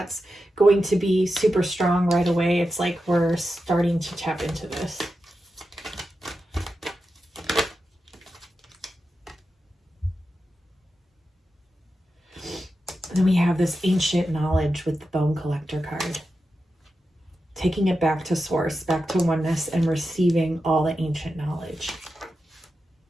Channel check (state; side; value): normal; both; correlation 0.90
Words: going to be super strong right away. It's like we're starting to tap into this. And then we have this ancient knowledge with the Bone Collector card. Taking it back to source, back to oneness, and receiving all the ancient knowledge.